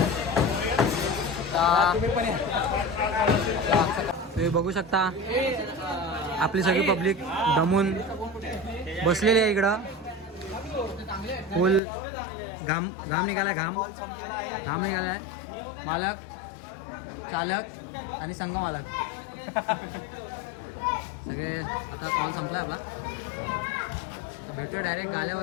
तुम्ही बघू शकता आपली सगळी पब्लिक दमून बसलेली आहे इकडं. फुल घाम निघाला घाम निघाला आहे. मालक, चालक आणि संघ मालक सगळे. आता कॉल संपला आपला, तर भेटूया डायरेक्ट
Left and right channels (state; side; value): drops out; right; at 11.8 s